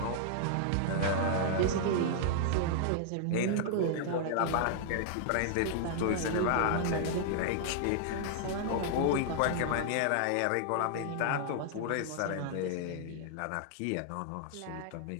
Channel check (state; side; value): different; both; correlation -0.01